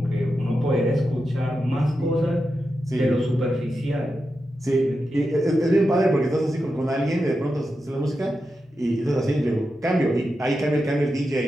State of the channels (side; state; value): both; normal; correlation 0.89